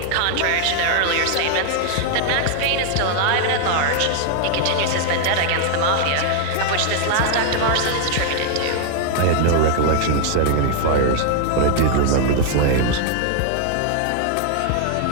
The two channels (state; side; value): different; both; correlation 0.00